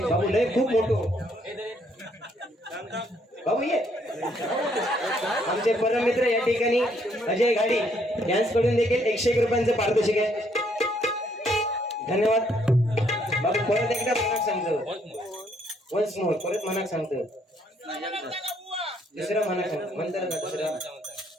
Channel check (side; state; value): both; normal; correlation 0.69